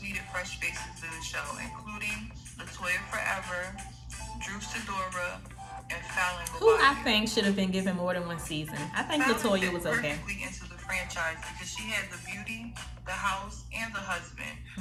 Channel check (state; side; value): identical; both; correlation 1.00